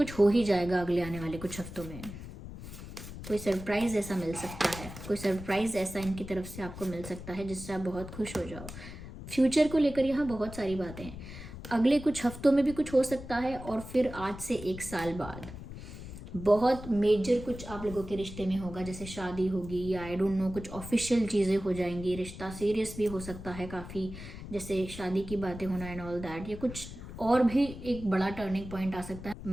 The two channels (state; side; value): noise; left; rumble, 12 dB below the sound